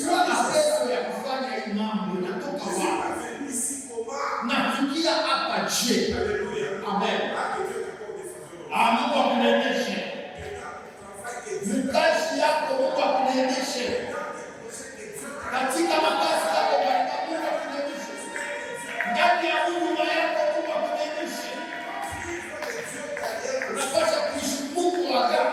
na pesa ya kufanya hii mambo, inatoka wapi? Nafikia hapa je? Amen. Mungu akuneemeshe mkazi yako, Mungu akuneemeshe katika makazi yako, Mungu akuneemeshe ndani ya huduma yako, Mungu akuneemeshe. Unapaswa kuishi Mungu wa agano.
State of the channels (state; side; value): identical; both; correlation 1.00